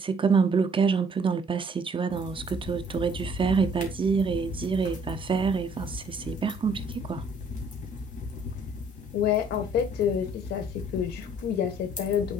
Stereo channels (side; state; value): both; normal; correlation 0.60